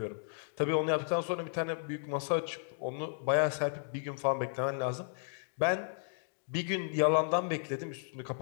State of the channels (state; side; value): silent; right; digital silence